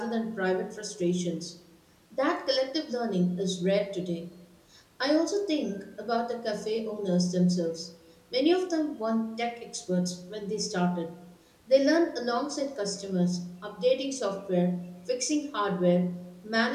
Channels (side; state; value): both; identical; correlation 1.00